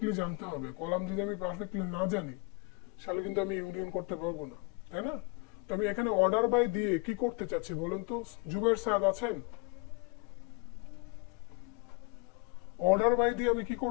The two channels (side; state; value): right; quieter; 30.6 dB